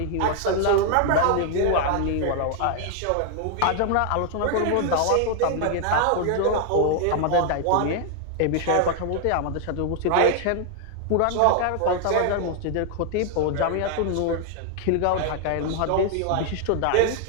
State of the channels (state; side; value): different; both; correlation 0.00